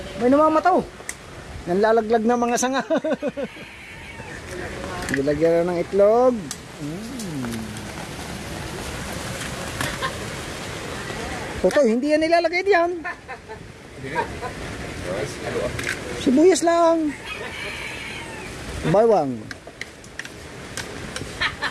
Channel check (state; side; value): identical; both; correlation 1.00